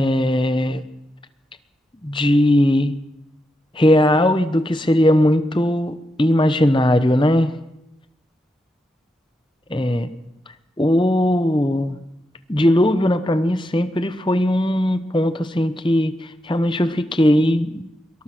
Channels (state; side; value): normal; both; correlation 0.85